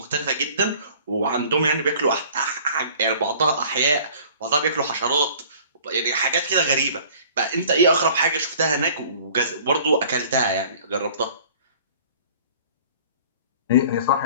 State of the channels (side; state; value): both; inverted; correlation -0.49